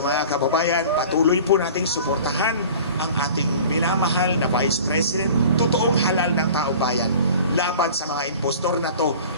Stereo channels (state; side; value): inverted; both; correlation -0.43